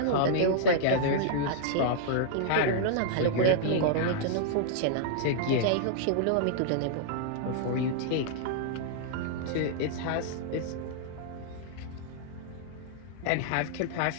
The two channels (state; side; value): different; both; correlation -0.01